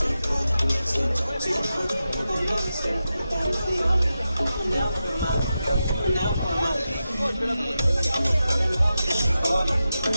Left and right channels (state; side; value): inverted; both; correlation -0.90